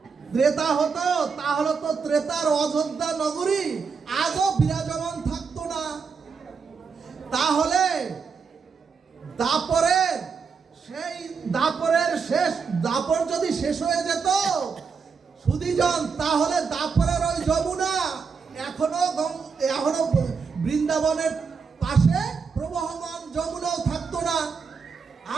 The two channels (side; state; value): left; quieter; 5.5 dB